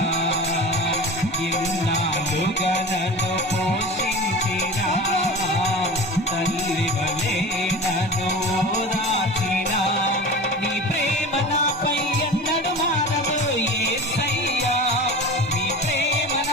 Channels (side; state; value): both; normal; correlation 0.34